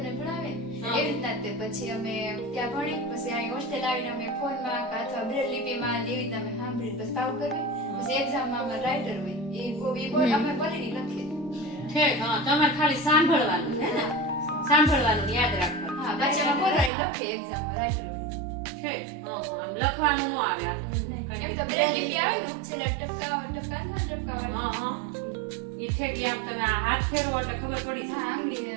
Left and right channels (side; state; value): left; drops out; at 16.9 s